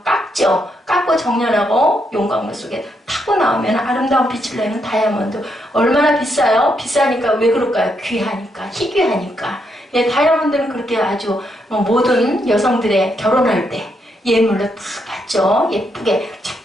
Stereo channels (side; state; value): both; normal; correlation 0.78